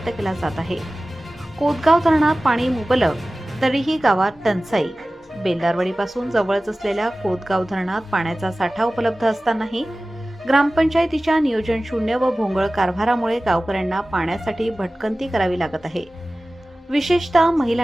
केला जात आहे। कोतगाव धरणात पाणी मुबलक तरीही गावात टंचाई। बेलदारवाडीपासून जवळच असलेल्या कोतगाव धरणात पाण्याचा साठा उपलब्ध असतानाही ग्रामपंचायतीच्या नियोजन शून्य व भोंगळ कारभारामुळे गावकऱ्यांना पाण्यासाठी भटकंती करावी लागत आहे। विशेषतः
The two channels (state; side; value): normal; both; correlation 0.97